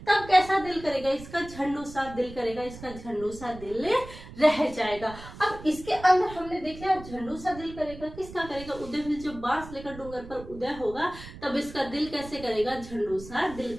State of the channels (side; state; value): right; noise; rumble, 15 dB below the sound